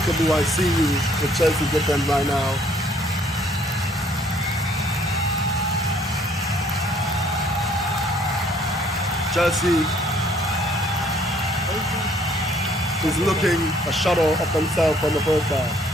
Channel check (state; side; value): normal; both; correlation 0.62